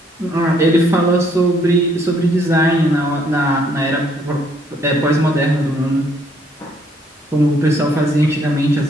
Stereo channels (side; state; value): both; normal; correlation 0.67